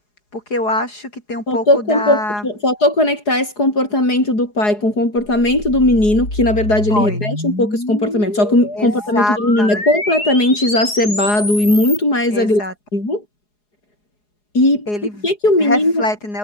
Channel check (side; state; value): right; late; 4.8 ms